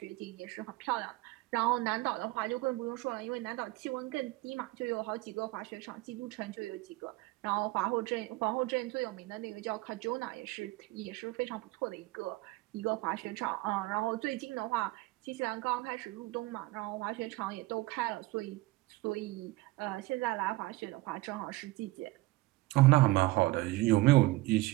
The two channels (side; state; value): left; quieter; 20.0 dB